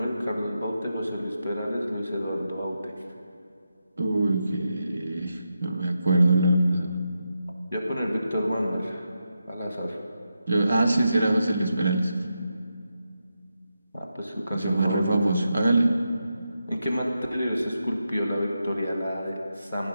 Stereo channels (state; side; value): inverted; both; correlation -0.87